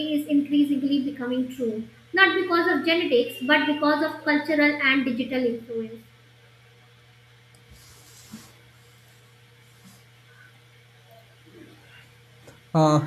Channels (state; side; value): identical; both; correlation 1.00